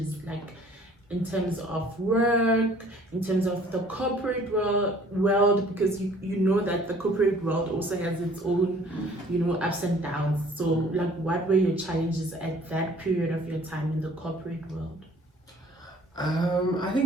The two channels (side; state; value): both; normal; correlation 0.55